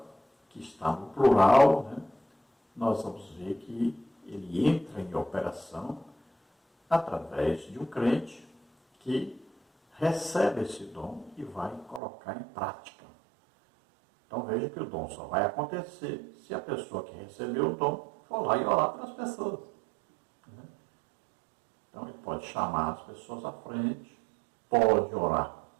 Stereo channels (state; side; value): drops out; left; at 12.0 s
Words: que está no plural, nós vamos ver que ele entra em operação através de um crente que recebe esse dom e vai colocar em prática. Então veja que o dom só vai acontecer se a pessoa que recebeu o dom for lá e orar pelas pessoas. Então ele pode chamar as pessoas à frente, pode orar